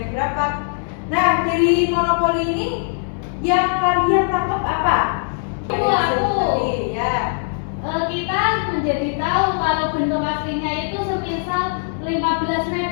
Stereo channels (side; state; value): right; silent; 60 dB below the other